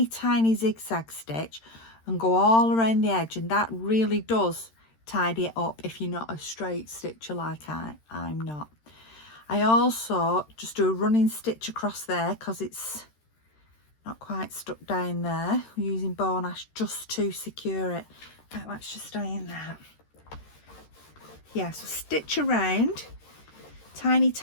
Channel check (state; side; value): late; right; 13 ms